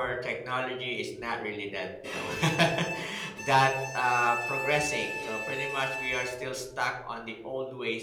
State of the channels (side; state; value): both; identical; correlation 1.00